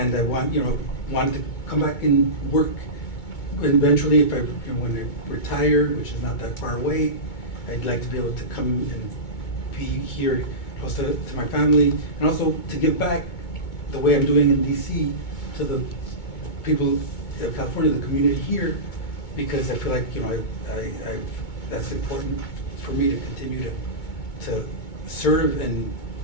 wanted to come back and work. Eventually, if when I retire, which is not that far away, I'd like to be able to come and be here close to my family, and also to give back the way I'm doing in DC to the people of California, the community here, because I feel like that's important for me to continue to serve and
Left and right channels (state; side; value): late; right; 2.2 ms